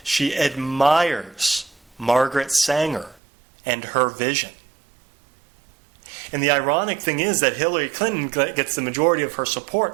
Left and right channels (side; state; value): left; drops out; at 3.2 s